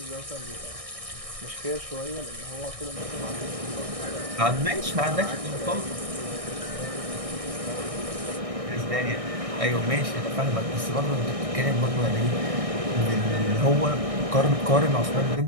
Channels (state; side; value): late; left; 1.6 ms